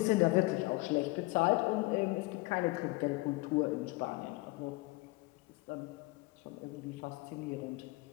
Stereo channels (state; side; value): quieter; right; 22.6 dB